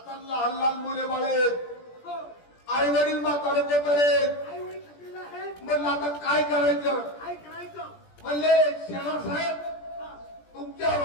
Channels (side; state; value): right; late; 17 ms